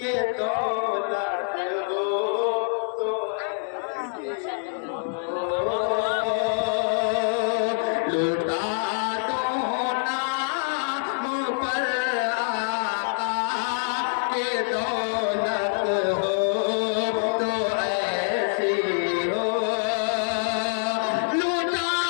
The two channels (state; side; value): silent; right; digital silence